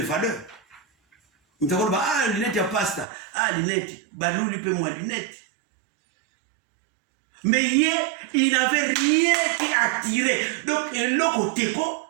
valeurs. On te dit bah lunette ya pasta, lunette, bah nous lui paie moi lunette. Mais il n'avait rien qui attirait. Donc un loco teco,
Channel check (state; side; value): drops out; left; at 3.1 s